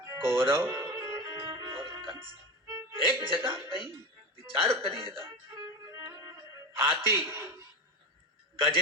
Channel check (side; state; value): both; normal; correlation 0.22